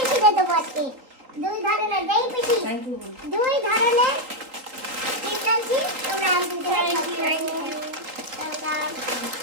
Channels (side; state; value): left; late; 3.8 ms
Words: দিয়ে দেবো আজকে, দুই ধরনের, যেই পিসি দুই ধরনের চিপস আনছি, তোমরা আনছি।